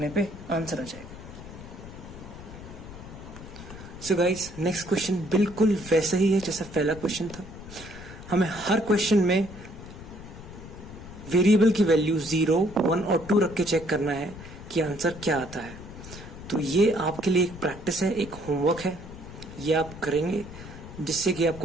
पे आंसर आ जाएगा। सो गाइस नेक्स्ट क्वेश्चन बिल्कुल वैसा ही है जैसा पहला क्वेश्चन था। हमें हर क्वेश्चन में वेरिएबल की वैल्यू 0, 1 और 2 रख के चेक करना है कि आंसर क्या आता है। तो ये आपके लिए एक प्रैक्टिस है, एक होमवर्क है, ये आप करेंगे जिससे कि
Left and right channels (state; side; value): noise; left; rumble, 14 dB below the sound